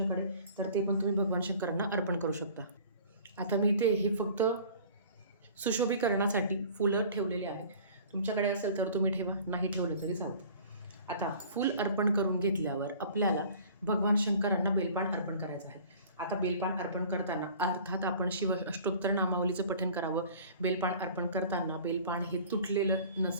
तर ते पण तुम्ही भगवान शंकरांना अर्पण करू शकता. आता मी इथे हे फक्त सुशोभीकरणासाठी फुलं ठेवलेले आहे. तुमच्याकडे असेल तर तुम्ही ठेवा, नाही ठेवलं तरी चालतं. आता फूल अर्पण करून घेतल्यावर आपल्याला भगवान शंकरांना बेलपान अर्पण करायचं आहे. आता बेलपान अर्पण करताना अर्थात आपण शिव अष्टोत्तर नामावलीचं पठण करावं. बेलपान अर्पण करताना बेलपान हे तुटलेलं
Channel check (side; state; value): both; inverted; correlation -0.47